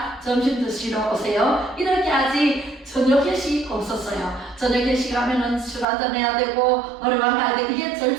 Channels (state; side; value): drops out; left; at 5.9 s